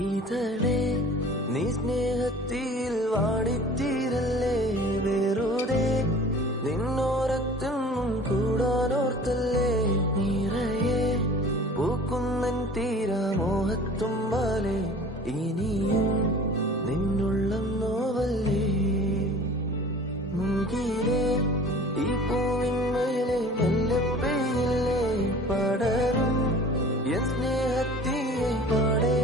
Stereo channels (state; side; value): normal; both; correlation 0.45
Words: ഇതളേ നീ സ്നേഹത്തിൽ വാടിത്തീരല്ലേ, വെറുതെ നിന്നോരത്തൊന്നും കൂടാനോർത്തല്ലേ, നിറയെ പൂക്കുന്നൻ തീരാമോഹത്തുമ്പാലെ ഇനിയും നിന്നുള്ളം നോവല്ലേ, മുങ്കിലെ ഈ പൂവിന്മേലെ മെല്ലെ പെയ്യില്ലേ, പടരും എൻ സ്നേഹത്തിയെ പാടെ